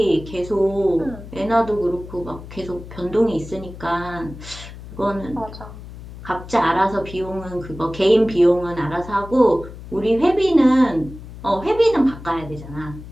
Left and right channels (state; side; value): noise; left; hum, 14 dB below the sound